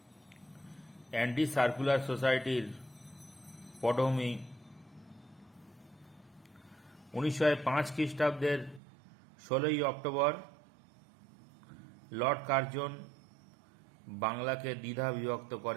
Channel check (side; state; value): left; drops out; at 8.8 s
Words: অ্যান্টি সার্কুলার সোসাইটির পটভূমি 1905 খ্রিস্টাব্দের 16ই অক্টোবর লর্ড কার্জন বাংলাকে দ্বিধা বিভক্ত